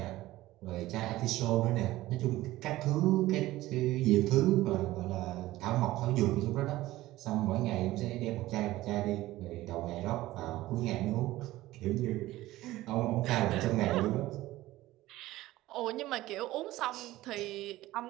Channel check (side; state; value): left; quieter; 16.7 dB